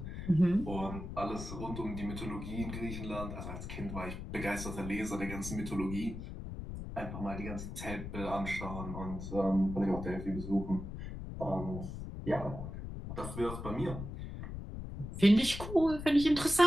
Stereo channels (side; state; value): left; noise; rumble, 8 dB below the sound